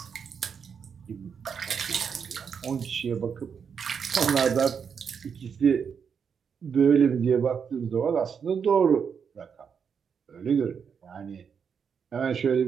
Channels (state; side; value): quieter; left; 6.7 dB